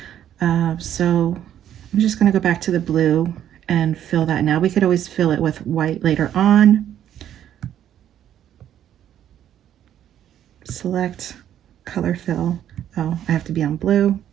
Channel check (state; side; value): quieter; left; 10.6 dB